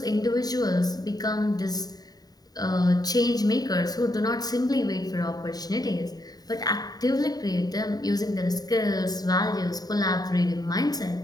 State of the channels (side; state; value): right; late; 0.18 ms